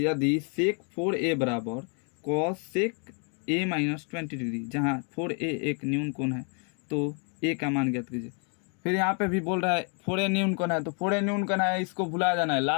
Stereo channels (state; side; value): quieter; right; 39.6 dB